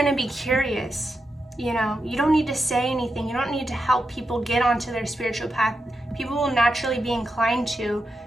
be curious, you know. You don't need to say anything. You don't need to help people get onto their spiritual path. People will naturally be inclined to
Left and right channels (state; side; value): normal; both; correlation 0.87